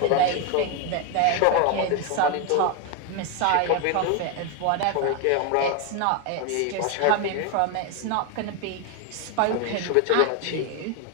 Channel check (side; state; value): both; different; correlation 0.01